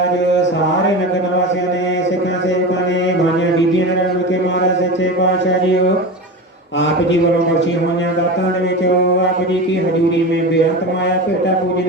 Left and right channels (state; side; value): normal; both; correlation 0.26